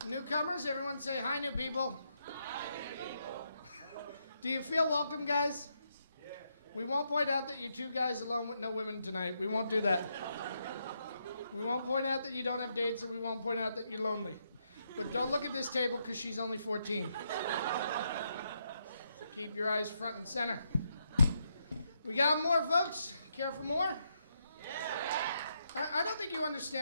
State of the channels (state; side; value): inverted; both; correlation -0.79